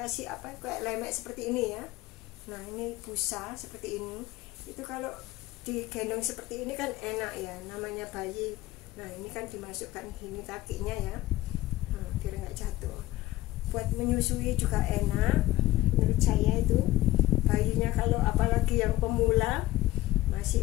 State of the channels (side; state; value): right; quieter; 16.7 dB